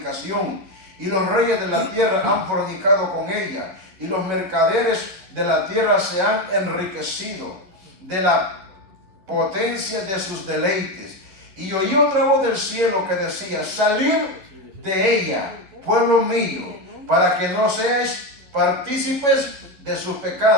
y los reyes de la tierra han fornicado con ella, y los mercaderes de la tierra se han enriquecido de la potencia de sus deleites. Y oí otra voz del cielo que decía: salid de ella, pueblo mío, para que no seáis partícipes de sus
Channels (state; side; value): late; left; 11 ms